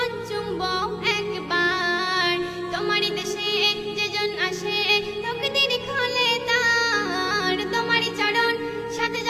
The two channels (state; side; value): identical; both; correlation 1.00